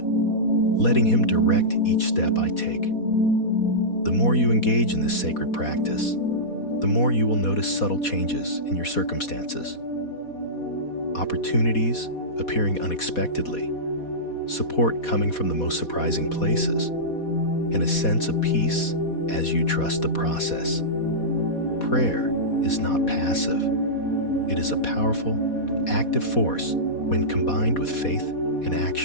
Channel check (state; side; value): late; right; 4.2 ms